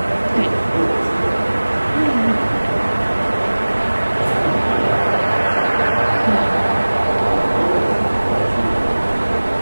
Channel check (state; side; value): inverted; both; correlation -1.00